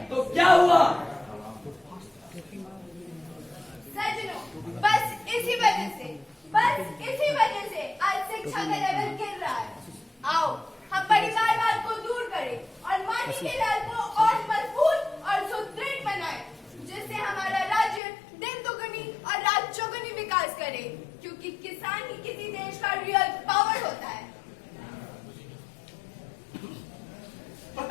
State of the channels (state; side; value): drops out; right; at 18.0 s